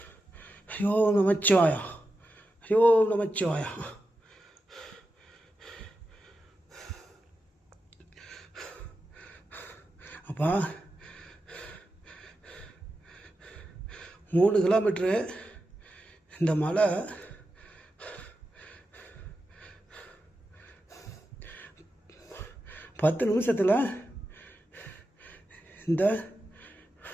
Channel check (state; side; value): normal; both; correlation 0.90